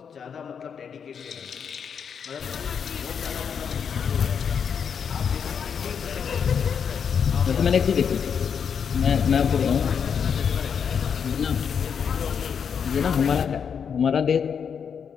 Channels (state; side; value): quieter; right; 7.1 dB